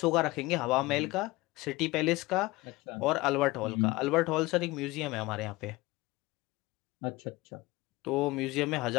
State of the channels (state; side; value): quieter; right; 20.9 dB